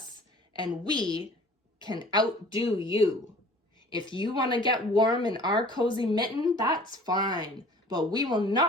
and we can outdo you. If you want to get warm in our cozy mitten, that's fine, but we will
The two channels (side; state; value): both; normal; correlation 0.48